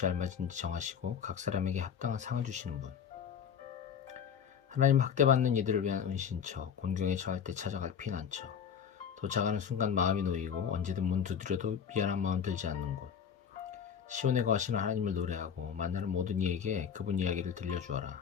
알맞은지 정하시고 각 사람에게 합당한 상을 주시는 분, 하나님 학대받는 이들을 위한 은신처, 곤경에 처할 때 찾아갈 피난처, 도착하는 순간 마음이 놓이고 언제든 문 두드려도 미안한 마음 들지 않는 곳, 시온에 거하시는 하나님을 노래하고 만나는 모든 이에게 그분 이야기를 들려주어라.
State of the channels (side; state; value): right; quieter; 7.6 dB